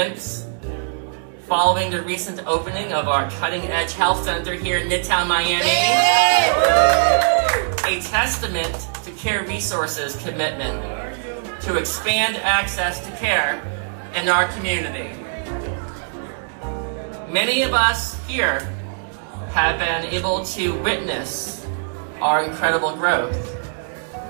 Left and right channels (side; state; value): left; silent; digital silence